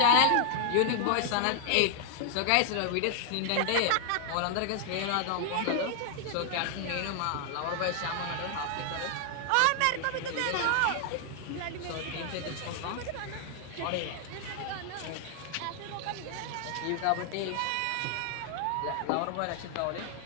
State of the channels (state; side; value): different; both; correlation 0.00